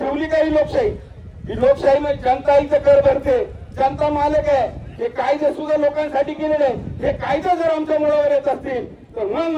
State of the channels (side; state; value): both; identical; correlation 1.00